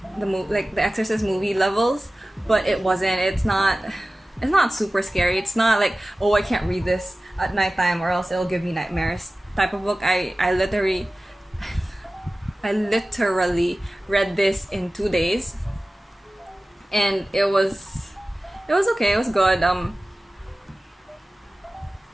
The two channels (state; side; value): normal; both; correlation 0.96